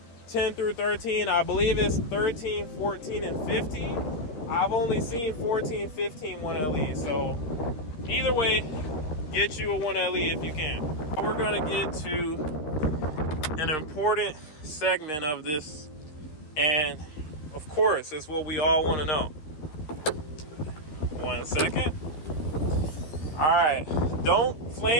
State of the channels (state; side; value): late; right; 13 ms